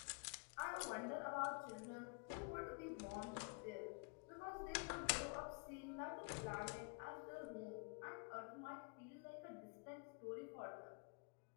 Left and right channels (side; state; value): right; quieter; 33.9 dB